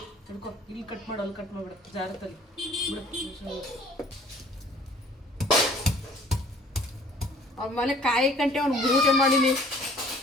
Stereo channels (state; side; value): normal; both; correlation 0.53